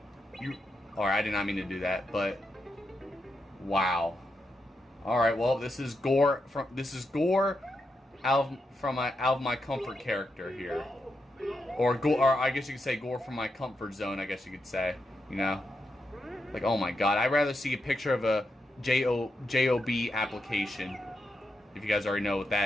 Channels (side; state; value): both; normal; correlation 0.85